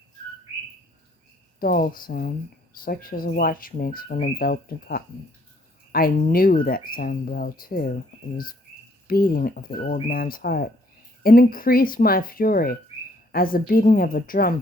dull sound, such as a watch makes when enveloped in cotton. I knew that sound well, too. It was beating of the old man's heart. It increased my fury, as the beating of a drum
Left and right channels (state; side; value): normal; both; correlation 0.66